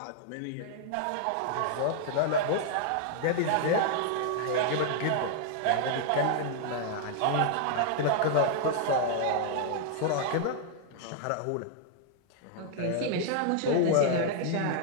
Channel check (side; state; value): both; different; correlation 0.00